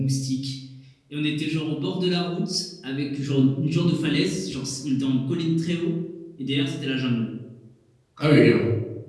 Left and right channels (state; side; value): identical; both; correlation 1.00